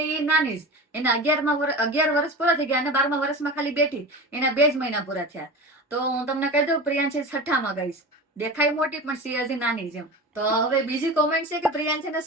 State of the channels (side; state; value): both; normal; correlation 0.30